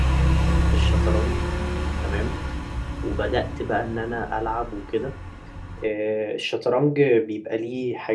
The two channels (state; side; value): identical; both; correlation 1.00